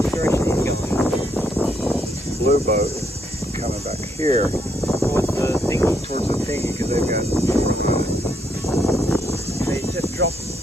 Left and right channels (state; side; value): normal; both; correlation 0.74